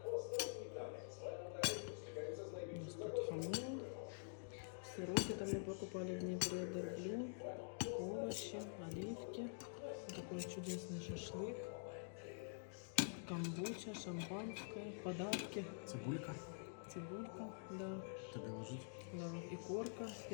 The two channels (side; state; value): right; silent; digital silence